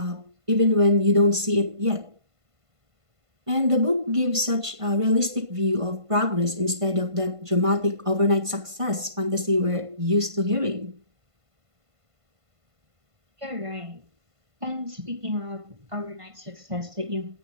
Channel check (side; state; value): left; late; 1.5 ms